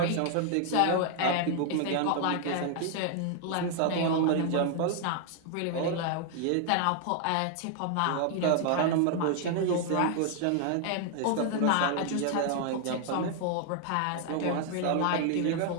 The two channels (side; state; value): both; different; correlation 0.00